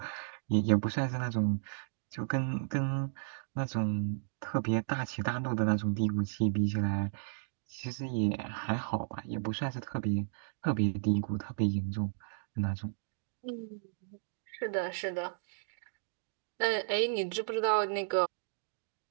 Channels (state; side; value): silent; left; digital silence